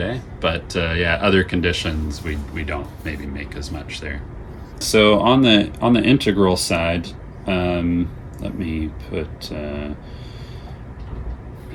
But other conditions, we don't maybe make as much there. So on the integral side, let me put,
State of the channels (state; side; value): identical; both; correlation 1.00